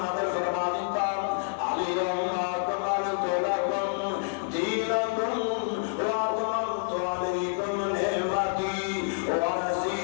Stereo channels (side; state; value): right; silent; 59 dB below the other